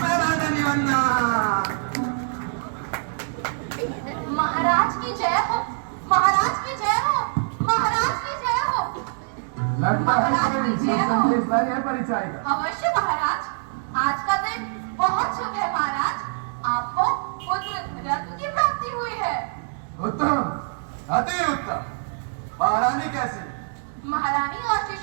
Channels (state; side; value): silent; left; digital silence